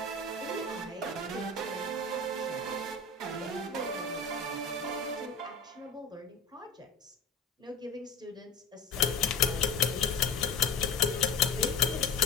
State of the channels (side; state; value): right; quieter; 4.1 dB